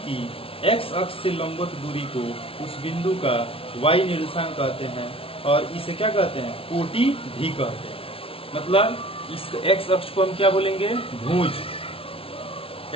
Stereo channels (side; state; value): right; late; 0.26 ms